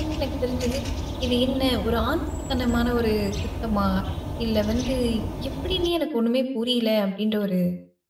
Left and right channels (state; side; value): identical; both; correlation 1.00